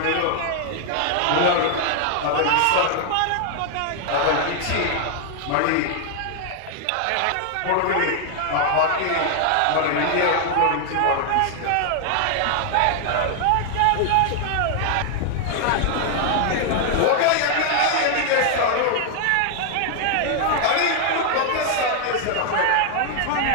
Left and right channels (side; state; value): both; different; correlation 0.00